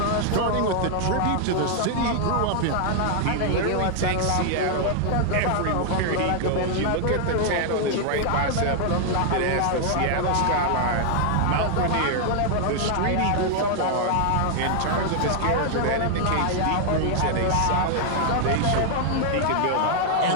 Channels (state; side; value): different; both; correlation 0.00